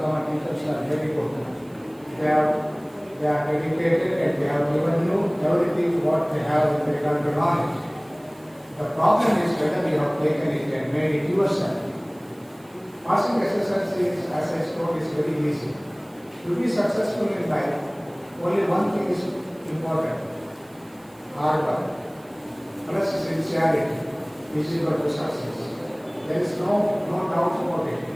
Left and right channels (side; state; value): right; noise; hiss, 29 dB below the sound